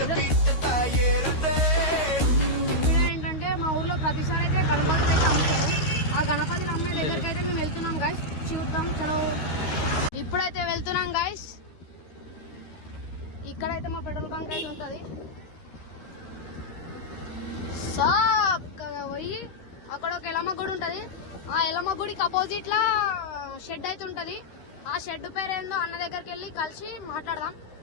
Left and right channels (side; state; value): right; late; 13 ms